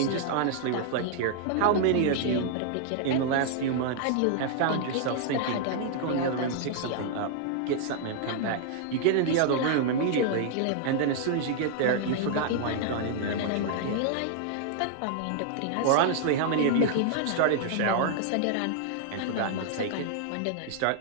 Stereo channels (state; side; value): different; both; correlation -0.01